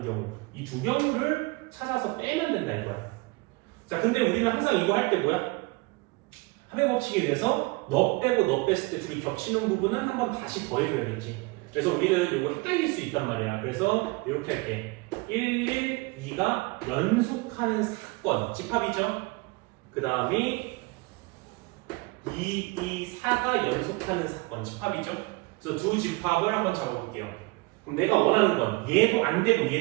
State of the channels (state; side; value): quieter; left; 24.8 dB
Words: 경우 이 두 경우를 찾아서 빼면 된다 이거야. 자, 근데 우리는 항상 이거 할 때 뭐야? 합의 법칙에 의해서 너 빼고 너 뺐을 때 둘이 겹치는 부분은 한 번 다시 더해줘야겠지. 그래서 우리는 이거 헷갈릴 수 있단 말이야. 그래서 이렇게 할게. 2가 연속하는 사건, 집합이죠. 그 다음에 4가 연속하는 사건, 집합이죠. 그래서 두 집합을 한번 잡아볼게요. 그럼 내가 원하는 건 얘도 안 되고